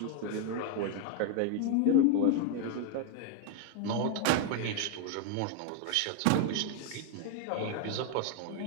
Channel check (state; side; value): different; both; correlation 0.01